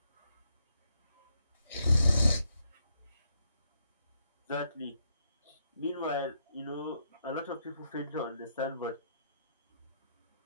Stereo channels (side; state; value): both; inverted; correlation -0.77